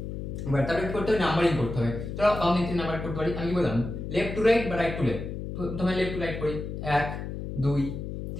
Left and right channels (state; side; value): noise; left; hum, 6 dB below the sound